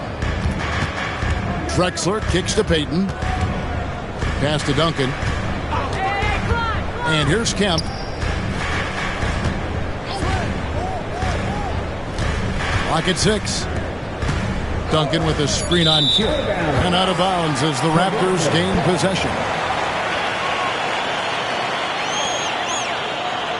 Drexler kicks to Payton. Pass to Duncan. And here's Kemp. Lock at 6. Duncan with a screen on Kidd. And out of bounds as the Raptors gain possession.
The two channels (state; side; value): identical; both; correlation 1.00